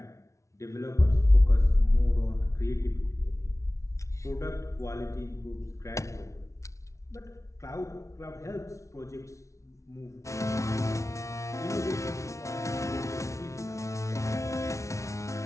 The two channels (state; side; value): late; right; 0.14 ms